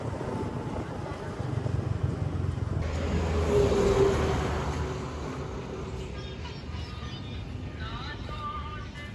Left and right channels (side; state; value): both; identical; correlation 1.00